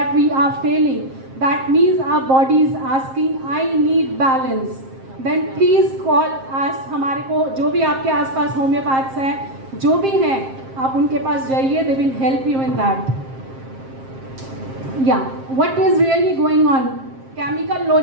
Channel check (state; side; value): late; left; 7.5 ms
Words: we are feeling, that means our body is asking I need balance. Then please call us. हमारे को जो भी आपके आसपास होम्योपैथ्स हैं, जो भी हैं, आप उनके पास जाइए. They will help you in that. What is really going on. Chemical